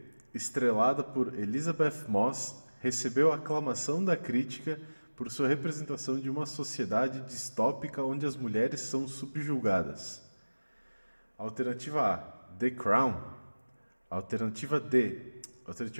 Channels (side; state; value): both; inverted; correlation -1.00